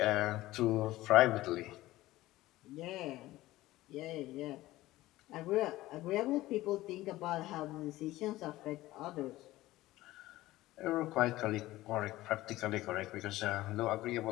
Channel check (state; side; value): quieter; right; 17.0 dB